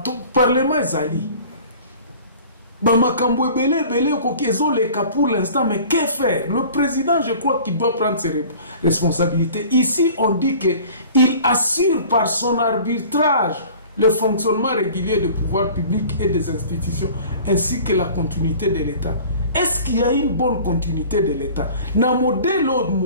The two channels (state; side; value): inverted; both; correlation -0.45